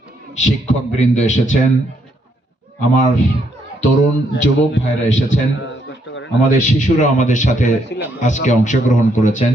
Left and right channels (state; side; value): normal; both; correlation 0.73